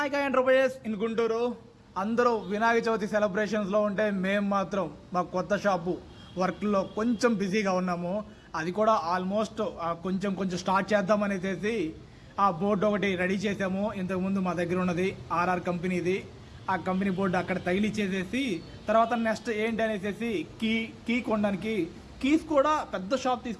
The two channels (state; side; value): identical; both; correlation 1.00